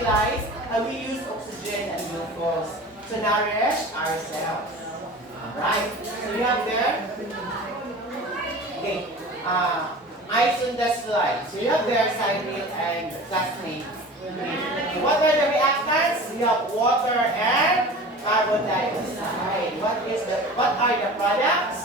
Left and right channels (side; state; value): both; normal; correlation 0.38